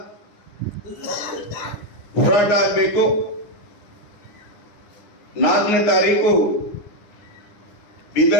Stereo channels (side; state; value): right; late; 9.6 ms